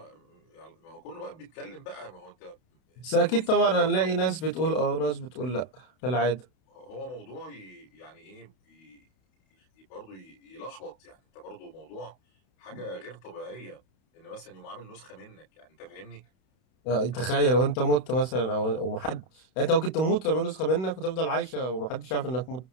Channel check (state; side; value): late; right; 32 ms